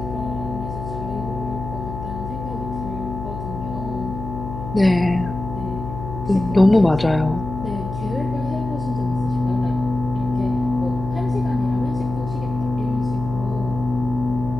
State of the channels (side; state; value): left; noise; hum, 7 dB below the sound